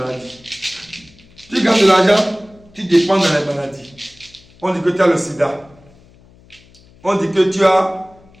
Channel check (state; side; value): noise; left; hum, 27 dB below the sound